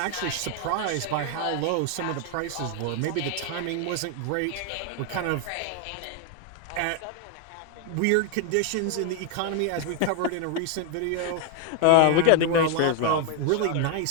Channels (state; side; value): different; both; correlation 0.01